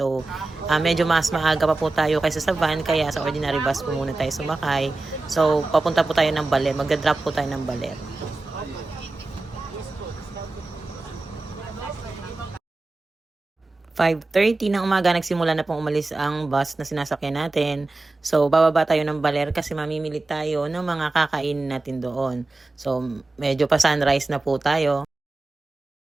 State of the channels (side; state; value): left; quieter; 3.1 dB